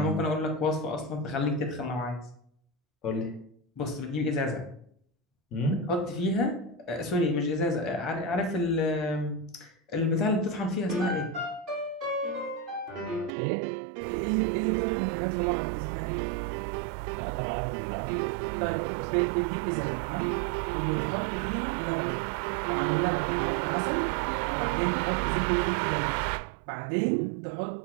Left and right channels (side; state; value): left; drops out; at 13.3 s